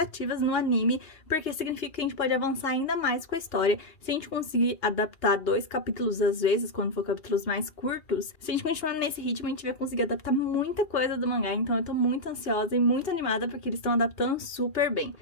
no anime, porque significa que a gente pode avançar ainda mais com a história. Se a gente conseguir adaptar 2 capítulos às vezes, quando for capítulos mais curtos, se a gente continuar nesse ritmo, a gente vai conseguir adaptar muita coisa do mangá. Então, eu tô muito ansiosa e muito animada, porque eles estão adaptando super bem.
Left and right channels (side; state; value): right; late; 2.4 ms